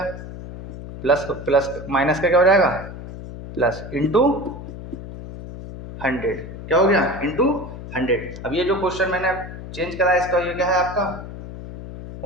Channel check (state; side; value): noise; left; hum, 11 dB below the sound